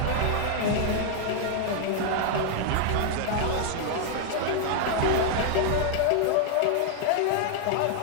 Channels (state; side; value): different; both; correlation 0.00